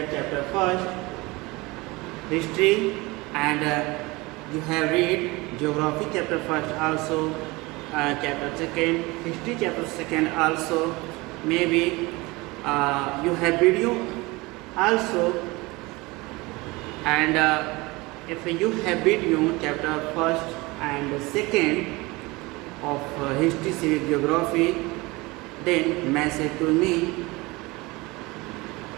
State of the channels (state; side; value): quieter; left; 23.2 dB